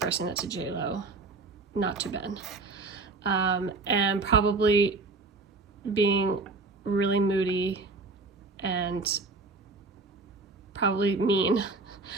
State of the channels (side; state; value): left; quieter; 3.7 dB